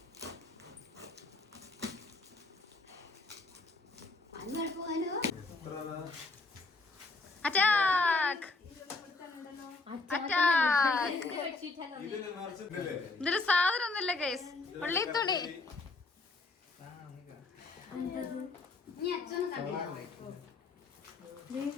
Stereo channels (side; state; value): right; quieter; 3.6 dB